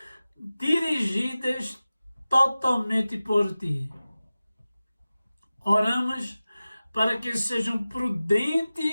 dirigidas totalmente por ti. Oramos para que sejam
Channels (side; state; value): both; inverted; correlation -0.96